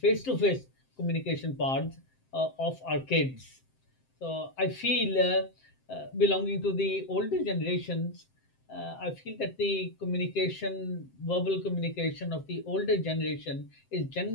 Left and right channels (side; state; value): right; late; 7.7 ms